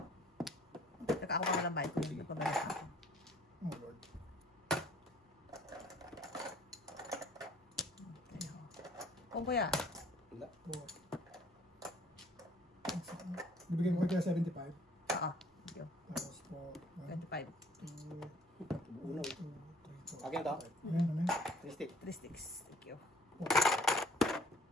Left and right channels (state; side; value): normal; both; correlation 0.56